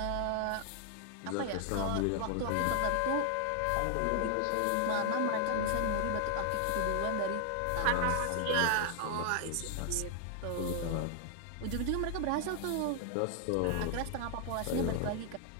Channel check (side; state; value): both; different; correlation 0.00